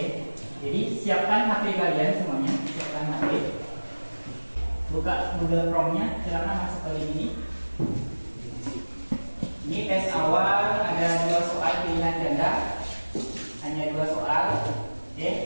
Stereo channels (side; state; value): both; inverted; correlation -1.00